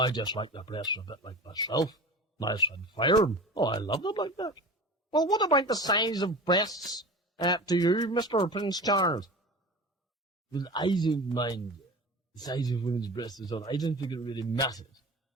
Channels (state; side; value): normal; both; correlation 0.34